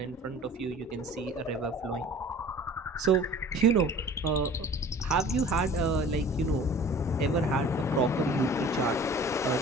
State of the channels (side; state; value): both; normal; correlation 0.46